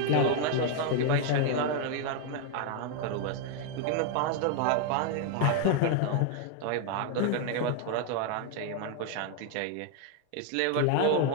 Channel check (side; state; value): both; different; correlation 0.01